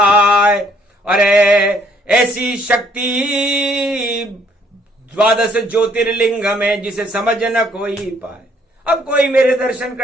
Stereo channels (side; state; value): both; normal; correlation 0.65